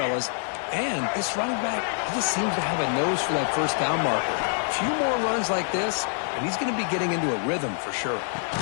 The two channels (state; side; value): silent; right; 61 dB below the other